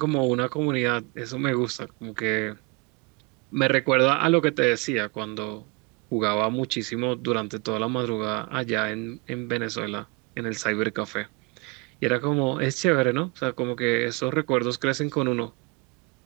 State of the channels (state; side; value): quieter; left; 27.6 dB